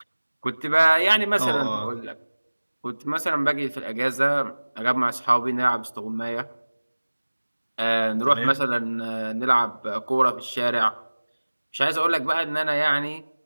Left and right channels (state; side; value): inverted; both; correlation -1.00